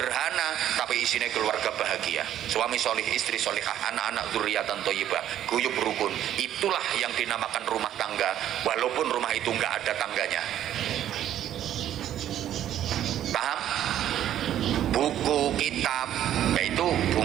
tapi isinya keluarga bahagia, suami solih, istri solihah, anak-anak dzurriatan thayyibah, guyub rukun. Itulah yang dinamakan rumah tangga, walaupun rumah itu nggak ada tangganya. Paham? Buku, kitab, yaitu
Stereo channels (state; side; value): quieter; left; 11.3 dB